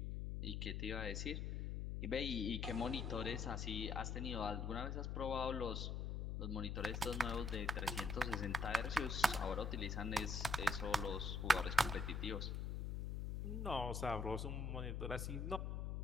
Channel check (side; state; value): left; noise; hum, 2 dB below the sound